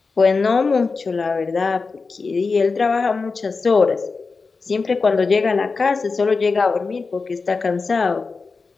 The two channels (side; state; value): right; quieter; 4.4 dB